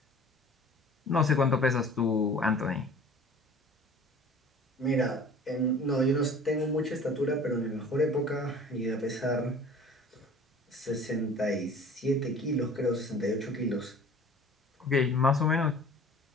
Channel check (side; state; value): both; normal; correlation 0.46